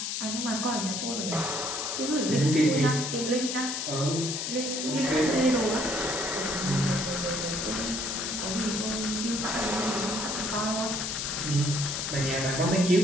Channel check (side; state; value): left; noise; hiss, 2 dB below the sound